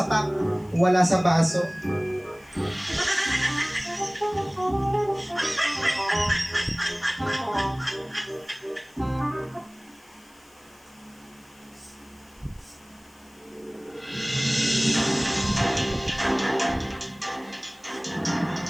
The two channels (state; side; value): noise; left; hiss, 28 dB below the sound